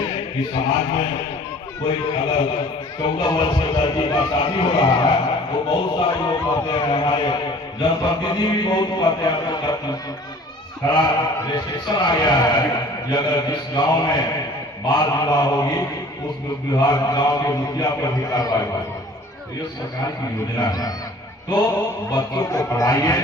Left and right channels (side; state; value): both; normal; correlation 0.49